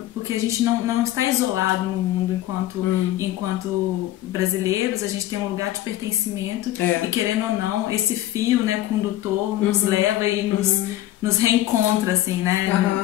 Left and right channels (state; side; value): quieter; right; 14.1 dB